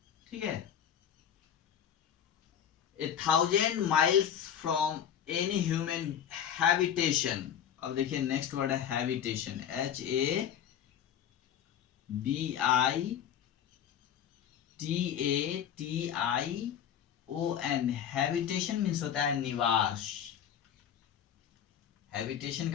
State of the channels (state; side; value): quieter; right; 9.3 dB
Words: ठीक है. 1,000 miles from any human habitation. अब देखिए नेक्स्ट वर्ड है हैबिटेशन, HABITATION. हैबिटेशन मीन्स होता है निवास. हैबिटेशन